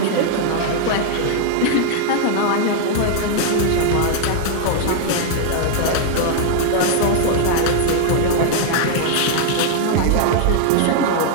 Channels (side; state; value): both; different; correlation -0.01